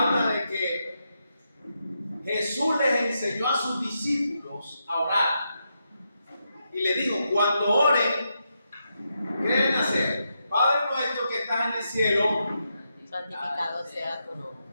de que Jesús les enseñó a sus discípulos a orar. Y le dijo, cuando oren, ¿qué deben hacer? Padre nuestro que estás en el cielo, santificado sea tu nombre.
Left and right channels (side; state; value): both; inverted; correlation -0.84